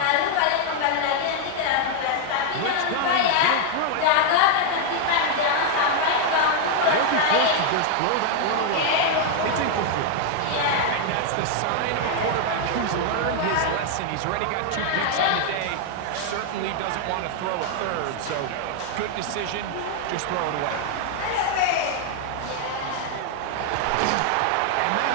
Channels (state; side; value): different; both; correlation 0.00